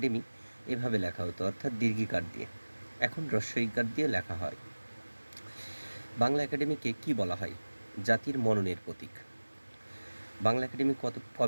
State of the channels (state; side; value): inverted; both; correlation -1.00